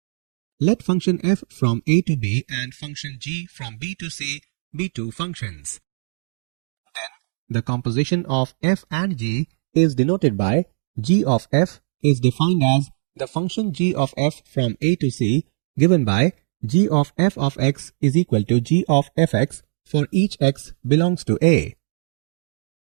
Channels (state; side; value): silent; left; digital silence